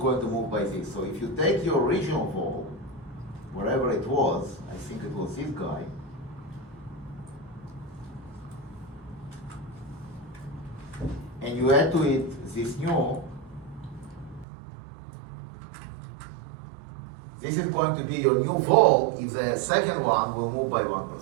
to move by this. So if you take your original vol, wherever it was, I think it was this guy, and you add to it this new, this is going to be your new vol if the second one will move by 1%.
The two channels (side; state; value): left; drops out; at 14.5 s